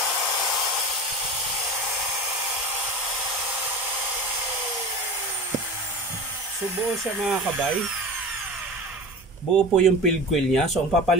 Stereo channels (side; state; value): both; normal; correlation 0.32